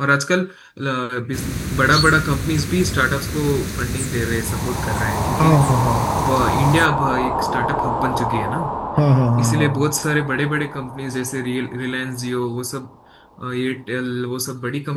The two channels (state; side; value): identical; both; correlation 1.00